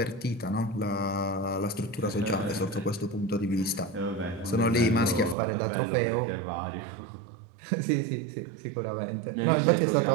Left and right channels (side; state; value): left; drops out; at 5.4 s